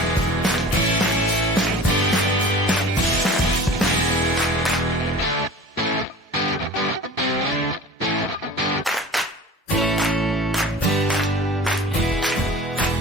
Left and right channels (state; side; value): normal; both; correlation 0.41